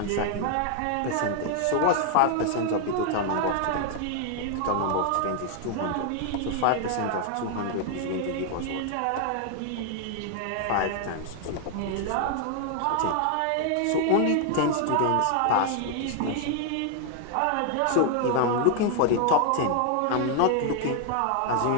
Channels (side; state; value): both; different; correlation 0.00